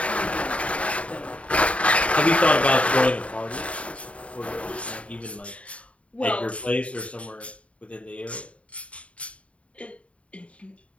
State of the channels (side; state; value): right; late; 0.064 ms